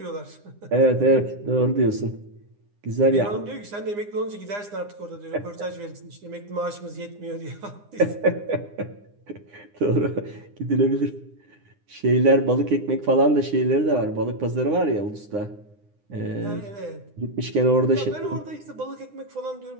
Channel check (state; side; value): late; left; 9.8 ms